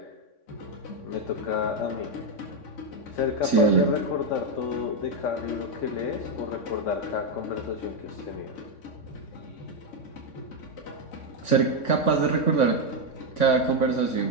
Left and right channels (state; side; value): late; right; 3.6 ms